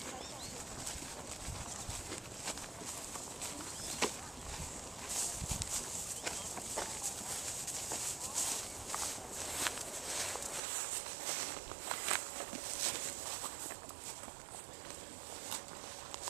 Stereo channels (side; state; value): left; drops out; at 10.6 s